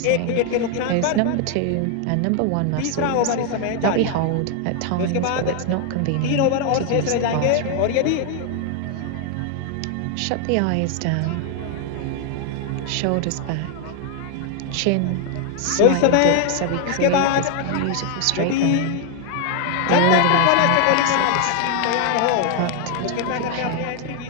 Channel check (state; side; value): different; both; correlation 0.00